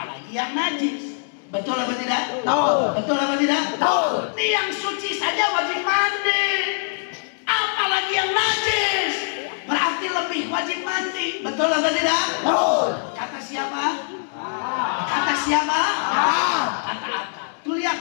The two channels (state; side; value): silent; right; digital silence